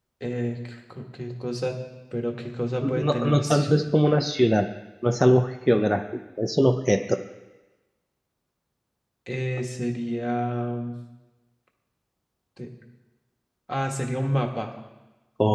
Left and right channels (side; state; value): both; identical; correlation 1.00